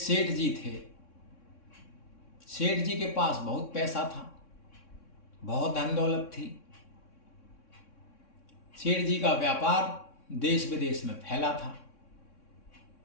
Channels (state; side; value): late; right; 3.6 ms